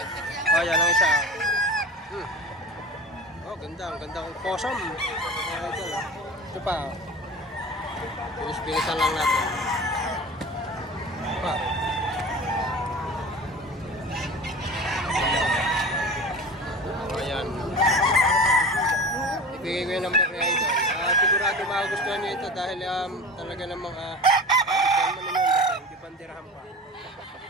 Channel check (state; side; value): normal; both; correlation 0.35